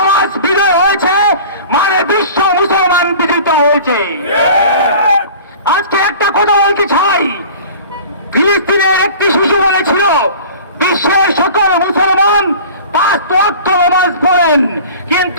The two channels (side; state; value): both; inverted; correlation -0.42